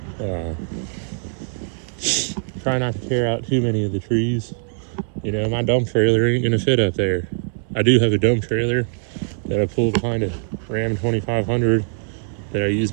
Try not to tear out too many of the trees. My dump trailer ain't gonna fit up there. I do have a dump trailer that I pulled behind a Ram 2500 that I use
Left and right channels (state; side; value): silent; left; 63 dB below the other